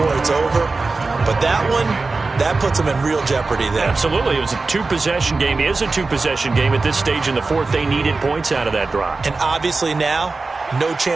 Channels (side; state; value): left; quieter; 3.8 dB